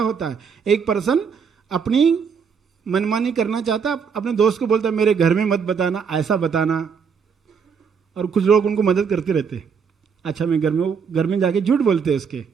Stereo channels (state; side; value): quieter; left; 6.3 dB